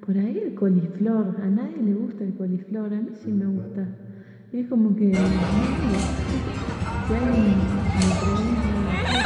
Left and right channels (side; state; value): both; identical; correlation 1.00